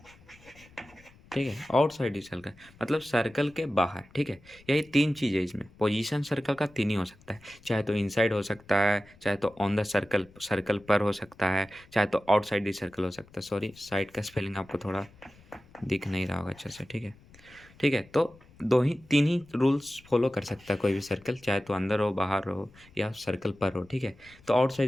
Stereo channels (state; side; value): noise; left; rumble, 26 dB below the sound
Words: ठीक है, आउटसाइड दी सर्कल मतलब सर्कल के बाहर, ठीक है। यही तीन चीज़ है इसमें, पोजीशन सर्कल का तीन ही हो सकता है, चाहे तो इनसाइड हो सकता है, चाहे तो ऑन द सर्कल पर हो सकता है, चाहे तो आउटसाइड दी सर्कल हो सकता है। सॉरी, साइड का स्पेलिंग आपको थोड़ा दिख नहीं रहा होगा अच्छे से, ठीक है, ठीक है। तो तीन ही रूल्स फॉलो कर सकता है कोई भी सर्कल, चाहे तो अंदर हो, बाहर हो या सर्कल पर हो, ठीक है। तो